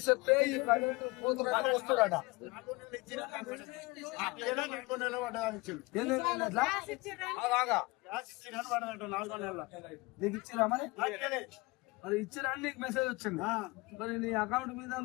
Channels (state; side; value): quieter; right; 24.4 dB